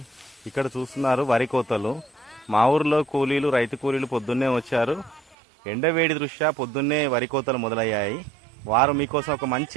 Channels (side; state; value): left; drops out; at 5.4 s